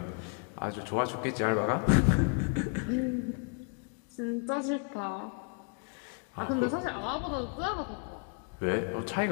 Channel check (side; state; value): right; quieter; 38.8 dB